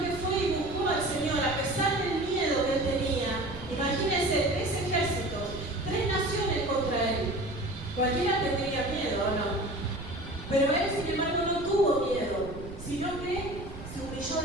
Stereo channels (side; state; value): right; noise; rumble, 12 dB below the sound